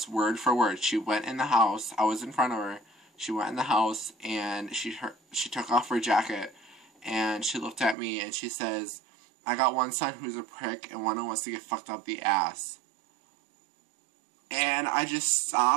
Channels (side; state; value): left; drops out; at 8.0 s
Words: word for word. She went in the house. I was in front of her. She went in the house, and she took off her jacket. And she looked at me, and she says, I got one son who's a prick, and one who wants to get fucked up the ass. And I just